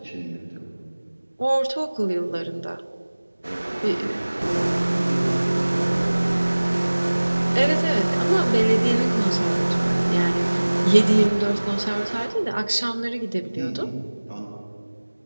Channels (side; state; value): both; inverted; correlation -1.00